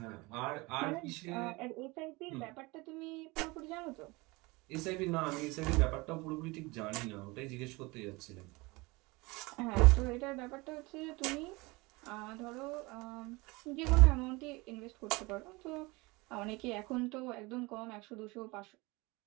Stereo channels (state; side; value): quieter; left; 24.2 dB